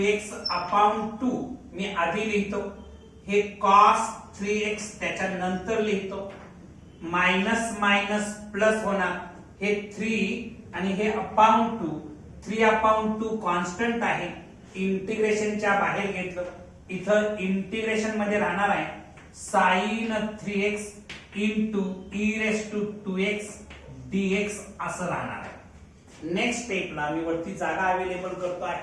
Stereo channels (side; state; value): both; identical; correlation 1.00